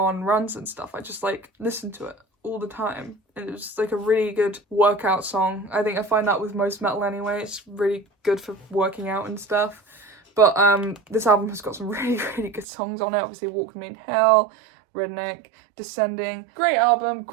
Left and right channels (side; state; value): left; drops out; at 12.7 s